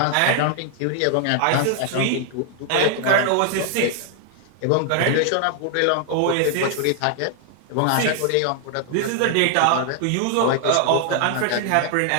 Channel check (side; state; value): both; different; correlation 0.00